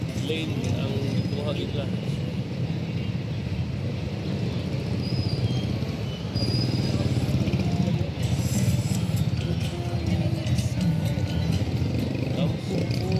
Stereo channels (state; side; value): identical; both; correlation 1.00